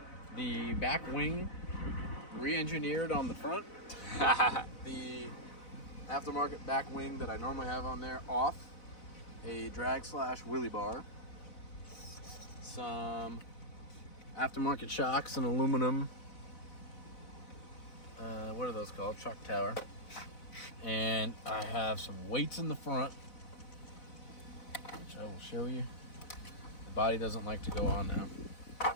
the back wing re-engineered on the front, the aftermarket back wing that I normally have on there off, a drag / wheelie bar, some aftermarket shocks and aluminum, what are those called? Shock tower. And I have some weights in the front, which I will show you. The body doesn't like to go on now.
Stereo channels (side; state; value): right; late; 4.0 ms